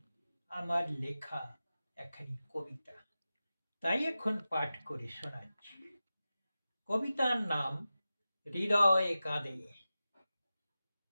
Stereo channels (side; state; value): both; inverted; correlation -0.94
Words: আমার লেখা একখানি কবিতা। তাই এখন পাঠ করে শোনাচ্ছি। কবিতার নাম হৃদয় কাঁদে।